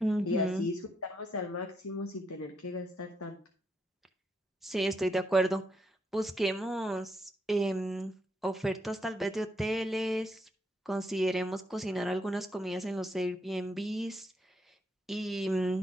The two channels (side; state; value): both; normal; correlation 0.78